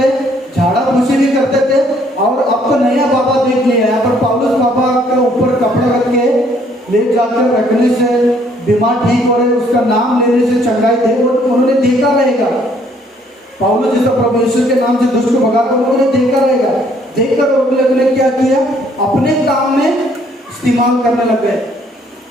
झाड़ा फूसी भी करते थे। और अब तो नया बाबा देख लिया, यहाँ पर पौलुस बाबा के ऊपर कपड़ा रख के ले जाकर रखने से बीमार ठीक हो रहे, उसका नाम लेने से चंगाई थे। उन्होंने देखा रहेगा पौलुस जैसा प्रभु यीशु के नाम से दुष्ट को भगाकर, उन्होंने देखा रहेगा। देखकर वो लोग ने क्या किया, अपने काम में इस्तेमाल करने लग गए,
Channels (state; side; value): normal; both; correlation 0.64